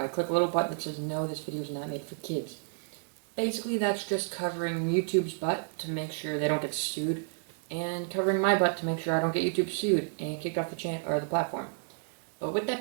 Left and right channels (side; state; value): left; silent; digital silence